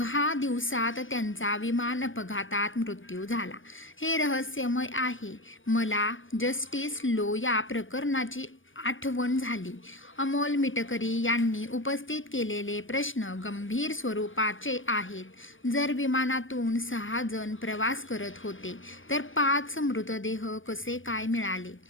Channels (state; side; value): late; right; 0.57 ms